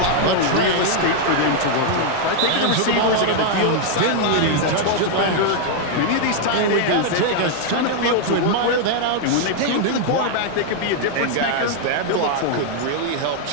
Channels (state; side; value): different; both; correlation 0.00